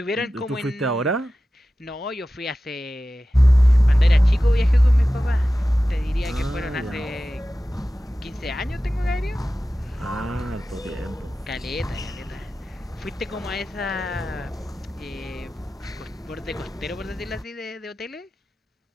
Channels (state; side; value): normal; both; correlation 0.95